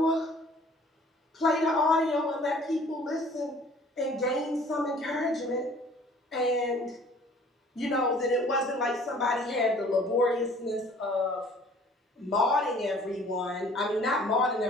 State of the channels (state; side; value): normal; both; correlation 0.53